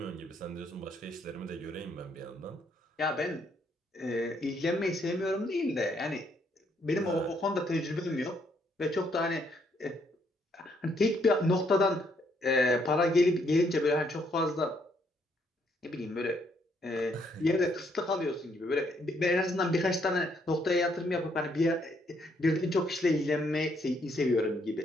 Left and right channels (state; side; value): normal; both; correlation 0.71